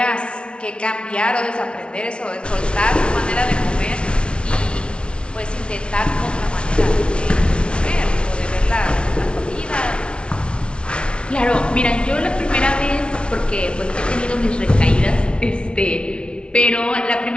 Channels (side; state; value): right; late; 0.058 ms